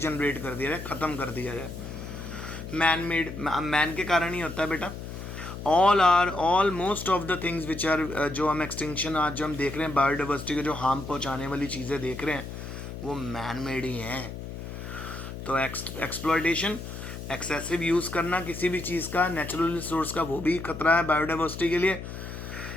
कर दिया जाए, ख़त्म कर दिया जाए, मैन के कारण ही होता है बेटा। All most of the things which are, जो हम एक्सटिंक्शन आज जो हम देख रहे हैं बायोडाइवर्सिटी को जो हार्म पहुंचाने वाली चीज़ें देख रहे हैं वो मैन मेड ही हैं। तो एक्सप्लॉयटेशन, एक्सेसिव यूज़ करना किसी भी चीज़ का, नेचुरल रिसोर्स का, वो भी खतरा है बायोडाइवर्सिटी के लिए।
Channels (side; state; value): left; noise; hum, 9 dB below the sound